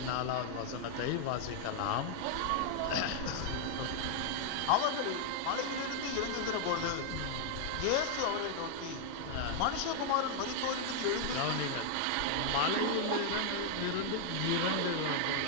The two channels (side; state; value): both; different; correlation 0.00